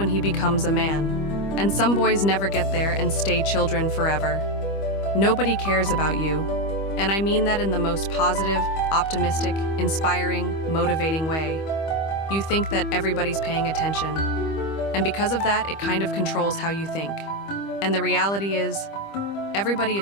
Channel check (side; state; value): right; late; 25 ms